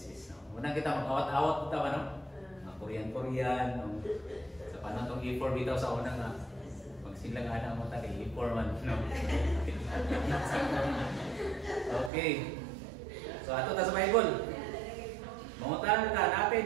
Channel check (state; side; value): drops out; left; at 12.1 s